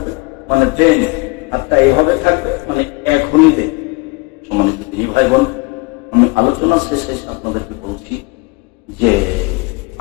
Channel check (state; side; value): quieter; right; 26.3 dB